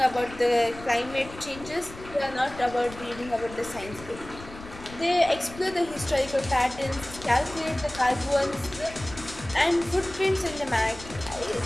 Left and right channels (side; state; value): left; noise; rumble, 16 dB below the sound